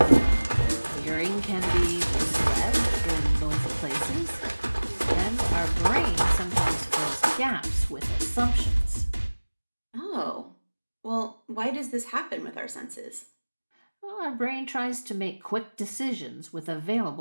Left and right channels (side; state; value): both; inverted; correlation -1.00